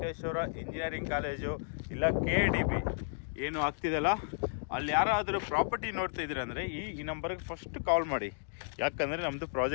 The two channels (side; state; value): right; silent; digital silence